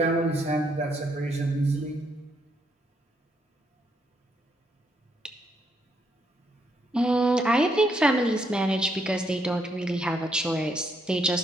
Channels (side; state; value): both; normal; correlation 0.75